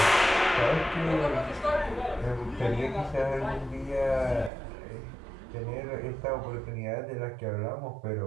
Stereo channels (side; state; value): left; drops out; at 4.5 s